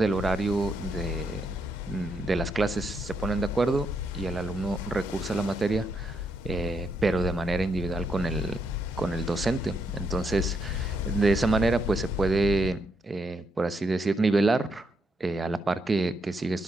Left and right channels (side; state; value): both; normal; correlation 0.78